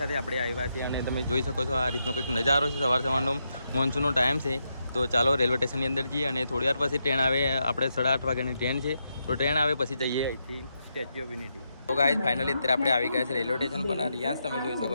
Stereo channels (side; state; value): both; inverted; correlation -0.83